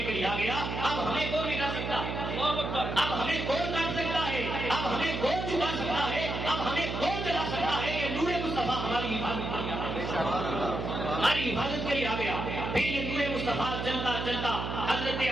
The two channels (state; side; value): noise; right; hum, 4 dB below the sound